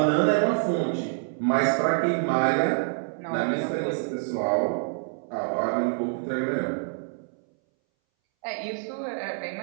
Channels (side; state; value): left; silent; 61 dB below the other